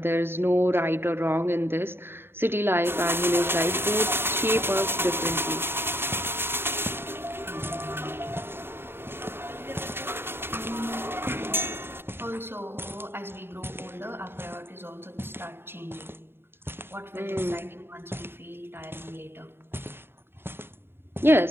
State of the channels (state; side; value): late; left; 0.11 ms